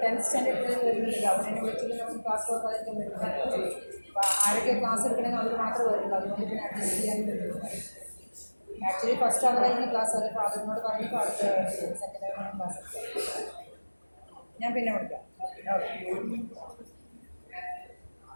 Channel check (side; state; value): both; inverted; correlation -1.00